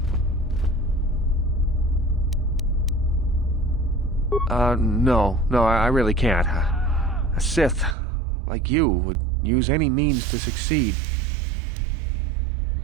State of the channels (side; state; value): left; drops out; at 8.0 s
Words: No, I really can't. A Sith, like you, would use any means to succeed.